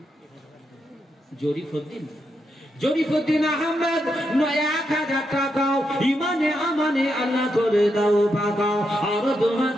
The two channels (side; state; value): both; normal; correlation 0.83